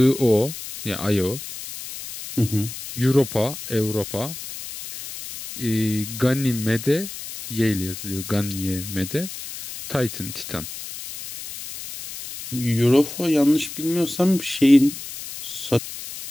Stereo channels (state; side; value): noise; left; hiss, 11 dB below the sound